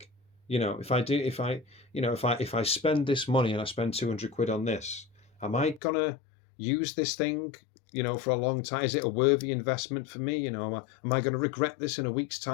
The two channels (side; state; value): right; drops out; at 5.8 s